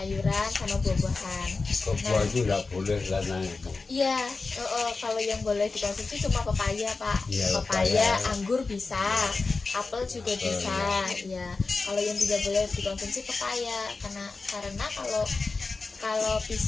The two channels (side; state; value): right; quieter; 4.0 dB